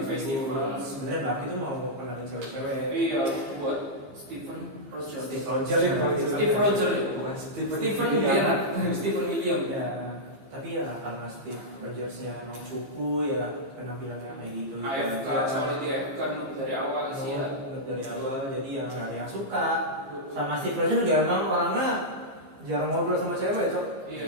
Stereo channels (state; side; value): late; left; 15 ms